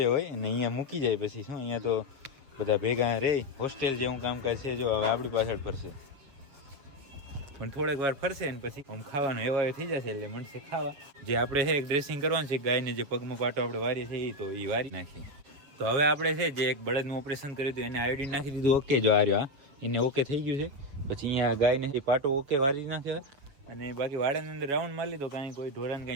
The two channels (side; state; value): left; late; 7.1 ms